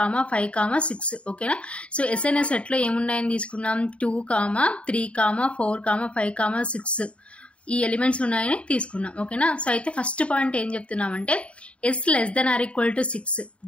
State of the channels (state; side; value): late; right; 0.061 ms